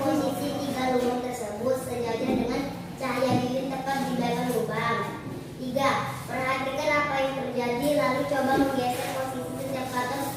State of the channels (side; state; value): both; identical; correlation 1.00